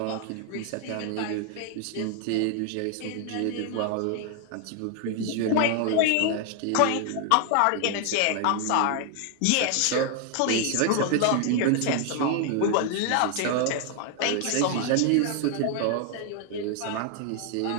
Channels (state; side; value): different; both; correlation 0.00